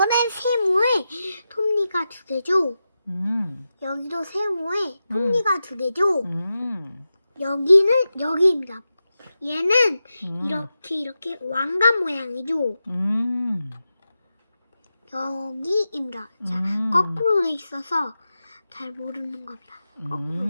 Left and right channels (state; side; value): inverted; both; correlation -0.91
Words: 세모에 톱니가 2개죠. 여기도 세모에 톱니가 2개죠. 여기는 여기입니다. 얘는 이렇게 왕관 모양이죠. 여기입니다. 자, 거꾸로 돼 있어서 잘 모르는 겁니다.